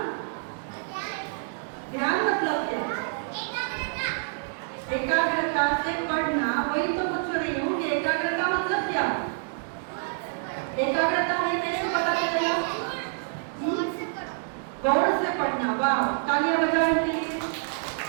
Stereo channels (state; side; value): silent; left; digital silence